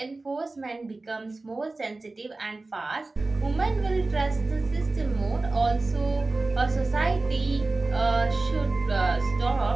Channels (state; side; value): quieter; left; 3.2 dB